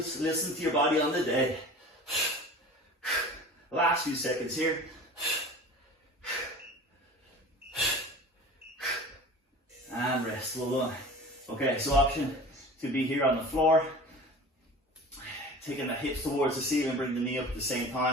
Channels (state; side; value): normal; both; correlation 0.39